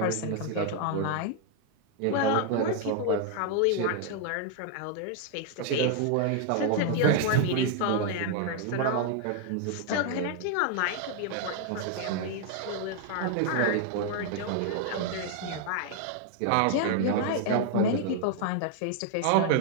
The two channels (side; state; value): both; different; correlation 0.00